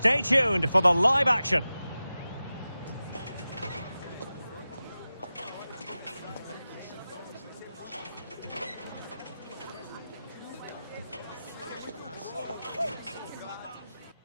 tuned for the live action.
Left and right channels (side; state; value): both; inverted; correlation -0.94